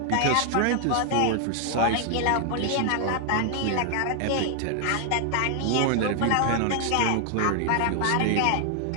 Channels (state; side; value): different; both; correlation 0.00